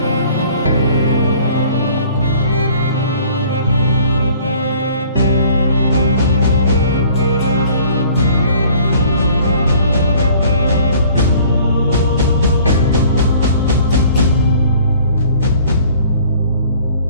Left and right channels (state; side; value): inverted; both; correlation -0.53